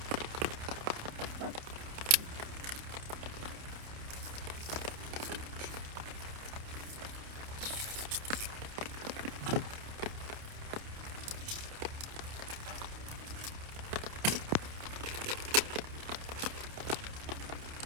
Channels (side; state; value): left; late; 29 ms